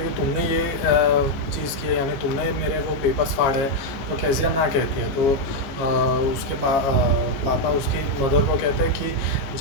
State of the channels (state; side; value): late; right; 15 ms